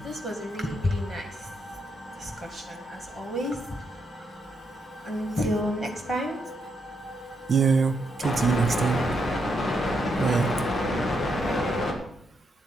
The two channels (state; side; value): normal; both; correlation 0.79